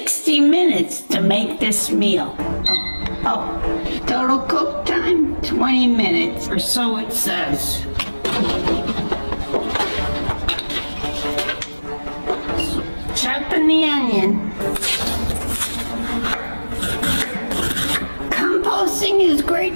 minutes to make this meal. Total cook time, 20 minutes, or so it says. Chopping the onion. Composting is great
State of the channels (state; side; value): inverted; both; correlation -1.00